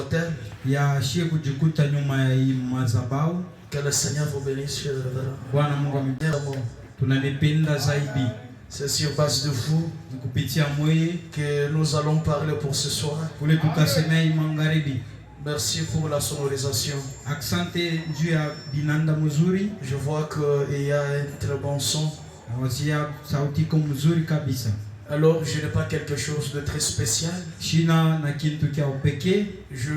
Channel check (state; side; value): identical; both; correlation 1.00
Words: Que le Seigneur vous bénisse. C'est sur base de vous que nous allons parler pour ce soir. Merci pour la sonorisation. Je vois qu'il y a un très bon son. Alors, je n'ai pas quelque chose de très spécial. Je